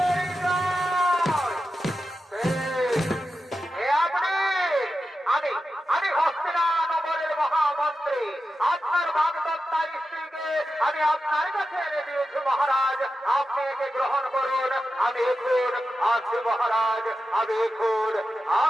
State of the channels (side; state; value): both; normal; correlation 0.91